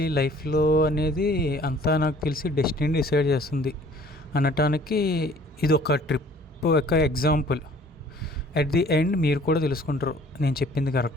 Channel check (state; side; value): normal; both; correlation 0.54